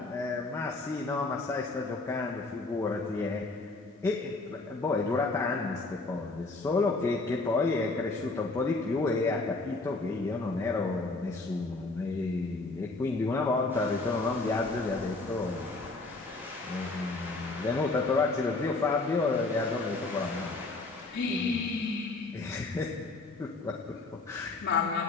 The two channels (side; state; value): right; quieter; 3.4 dB